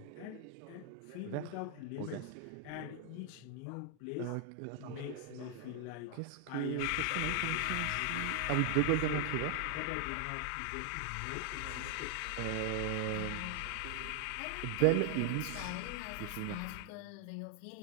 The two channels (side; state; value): both; different; correlation 0.00